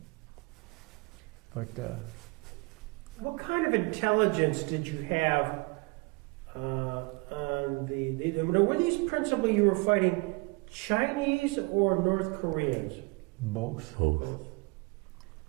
But what kind of intelligence did you have on were these principally you were fighting Chinese or North Koreans? both. Both.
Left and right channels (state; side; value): quieter; left; 27.9 dB